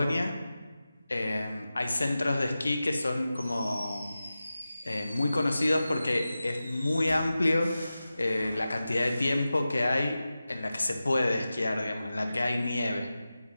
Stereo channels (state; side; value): inverted; both; correlation -0.94